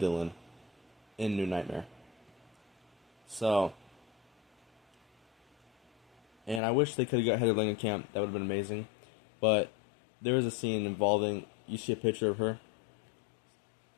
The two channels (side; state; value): right; drops out; at 6.6 s